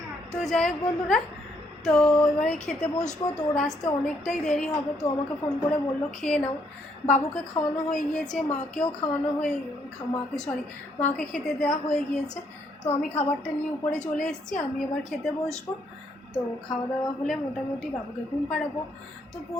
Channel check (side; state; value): both; normal; correlation 0.71